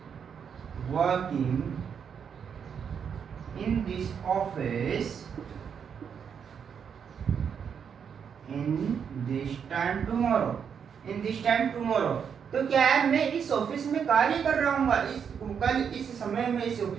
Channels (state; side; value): quieter; left; 7.2 dB